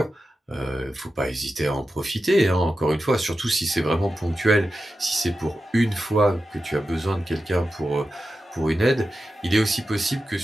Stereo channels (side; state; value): both; normal; correlation 0.91